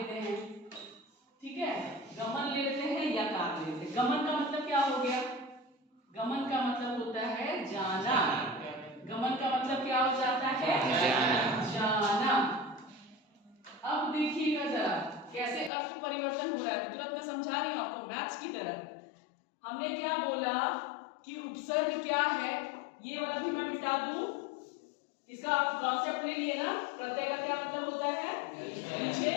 हैं। ठीक है, गमन ले लेते हैं या कार ले लेते हैं। गमन का मतलब क्या हो गया, गमन का मतलब होता है जाना, गमन का मतलब क्या हो जाता है, जाना। अब देखिएगा जरा कैसे अर्थ परिवर्तन हो रहा है, तुरंत मैं समझा रही हूं आपको मैथ्स की तरह। हमने क्या बोला कि उपसर्ग क्या है, ये वाला भी मैं मिटा दूं, इसका आप कॉन्सेप्ट ले लिए ना, प्रत्यय का क्या मतलब होता है, पीछे।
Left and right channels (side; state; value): right; drops out; at 15.7 s